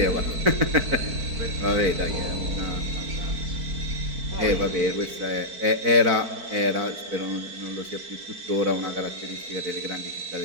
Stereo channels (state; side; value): late; left; 4.5 ms